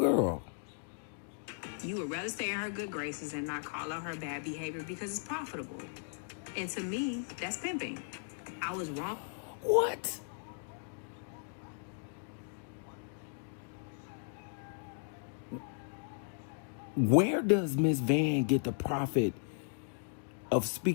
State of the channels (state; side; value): silent; right; digital silence